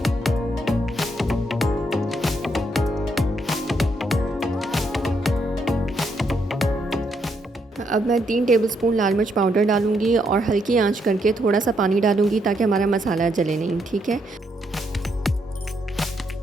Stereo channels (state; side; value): normal; both; correlation 0.76